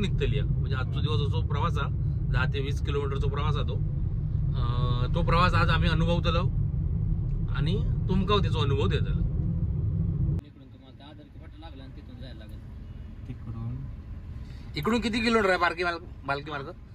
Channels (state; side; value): identical; both; correlation 1.00